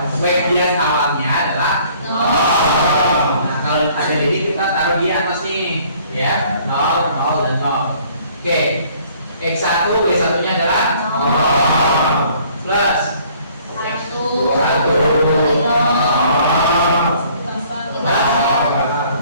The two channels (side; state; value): both; inverted; correlation -0.58